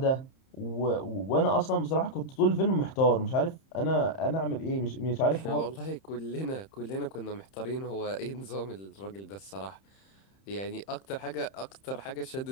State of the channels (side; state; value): right; late; 31 ms